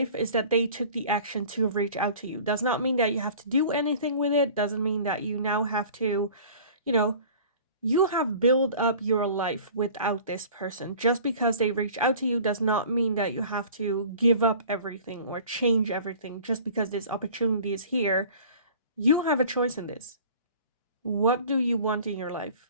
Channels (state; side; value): inverted; both; correlation -0.45